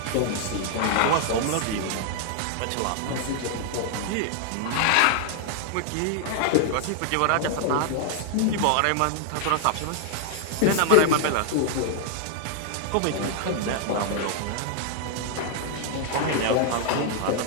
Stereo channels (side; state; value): both; different; correlation 0.00